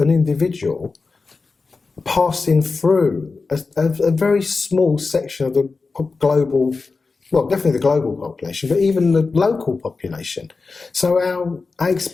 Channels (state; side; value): quieter; right; 4.2 dB